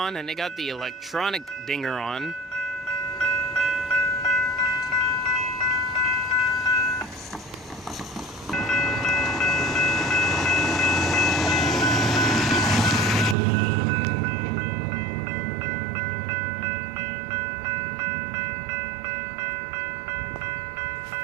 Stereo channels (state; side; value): drops out; left; at 13.4 s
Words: and they got the electronic dinger on.